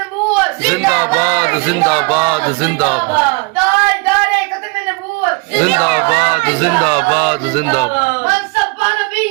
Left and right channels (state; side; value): quieter; left; 28.8 dB